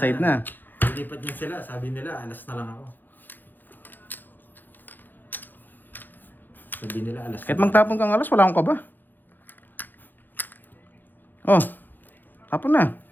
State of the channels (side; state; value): right; late; 0.089 ms